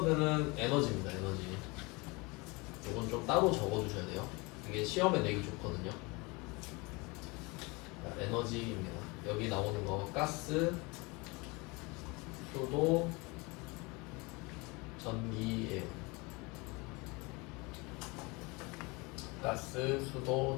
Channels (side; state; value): right; quieter; 26.5 dB